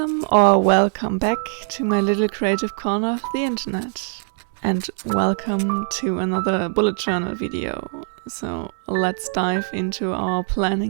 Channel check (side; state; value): left; silent; 60 dB below the other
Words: back to my little creative corner of the internet. And welcome to another bullet journal video. So let's dive into our